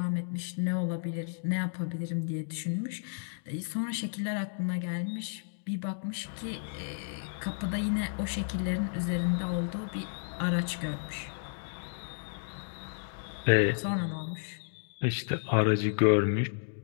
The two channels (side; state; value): right; silent; digital silence